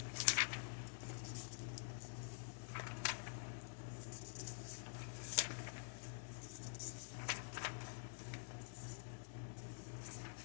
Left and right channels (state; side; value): silent; right; digital silence